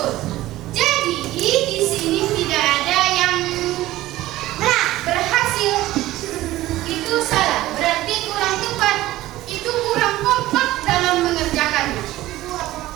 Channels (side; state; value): left; quieter; 16.1 dB